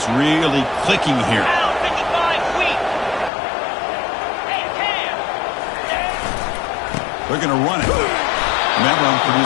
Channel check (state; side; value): drops out; right; at 3.3 s